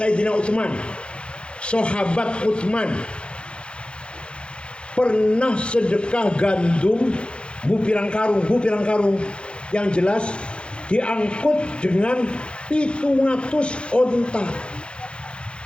Utsman, sahabat Utsman, pernah sedekah gandum bu pirang karung, yang jelas diangkut dengan 700 onta.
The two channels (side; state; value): right; late; 0.057 ms